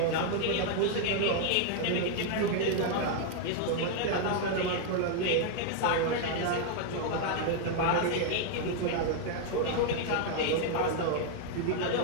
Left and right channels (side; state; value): both; different; correlation 0.00